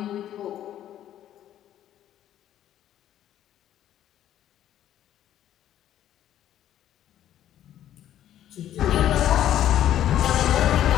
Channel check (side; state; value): right; quieter; 11.6 dB